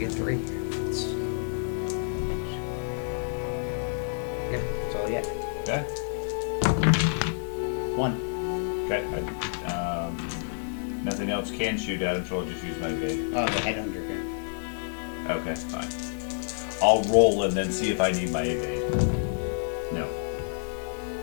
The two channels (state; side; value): silent; right; digital silence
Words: 3. Yeah, that's all yet. Okay. 1. Okay. Nothing else can shoot at him, so I'll just use my evade. Oh, the headhunter again. Okay, fine. I'll roll and then see if I need my evade. No.